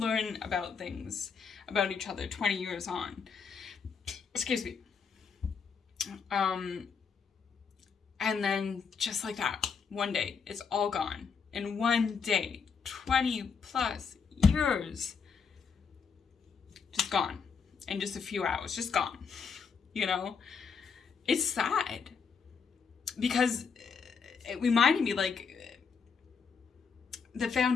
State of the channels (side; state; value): right; quieter; 5.9 dB